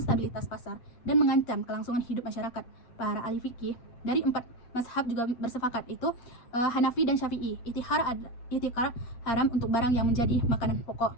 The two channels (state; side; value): late; right; 8.4 ms